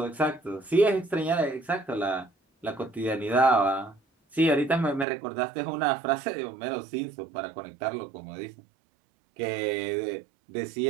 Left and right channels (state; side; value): drops out; left; at 5.1 s